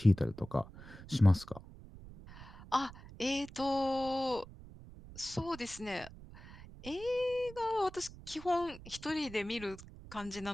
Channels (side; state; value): right; noise; rumble, 17 dB below the sound